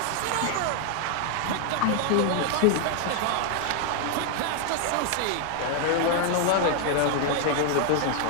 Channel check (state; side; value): different; both; correlation 0.00